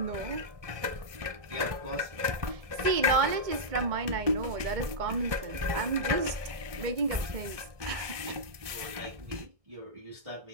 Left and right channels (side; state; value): left; late; 1.6 ms